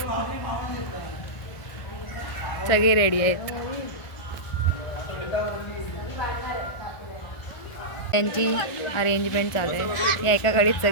सगळे रेडी आहेत. त्यांची अरेंजमेंट चालू आहे. या एका गाडीत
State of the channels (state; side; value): late; right; 1.4 ms